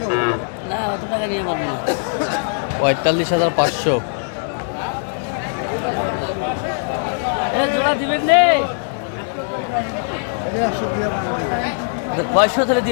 45,500। পয়সা ধরে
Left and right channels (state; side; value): silent; right; digital silence